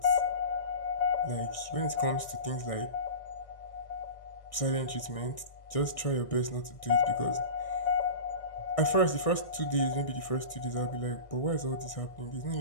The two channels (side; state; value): right; late; 1.6 ms